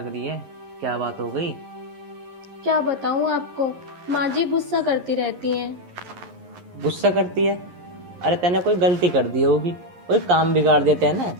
रही है, क्या बात हो गई? क्या बताऊं आपको, माँ जी गुस्सा करती रहती हैं। गुस्सा करती है? अरे तैने कोई गलती कर दी होगी, कोई काम बिगाड़ देते हैं ना,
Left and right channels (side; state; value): left; late; 11 ms